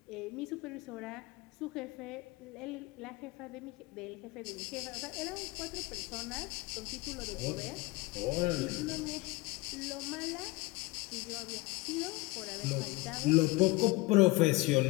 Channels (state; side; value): quieter; right; 22.0 dB